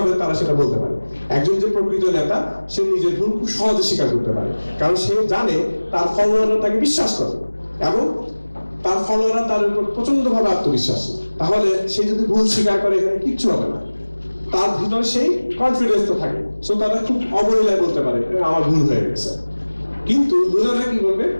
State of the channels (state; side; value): inverted; both; correlation -1.00